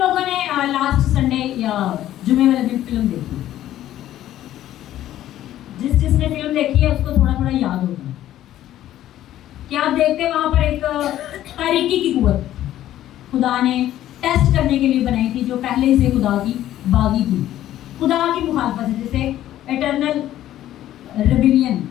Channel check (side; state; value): right; quieter; 12.9 dB